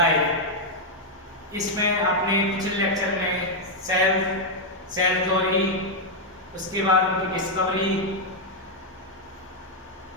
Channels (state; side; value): normal; both; correlation -0.01